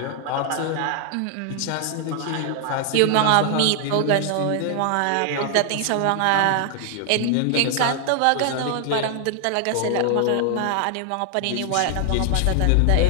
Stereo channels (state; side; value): different; both; correlation 0.00